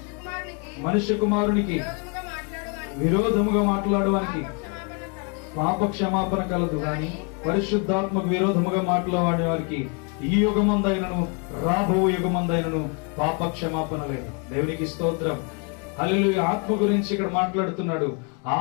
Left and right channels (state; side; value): quieter; right; 34.6 dB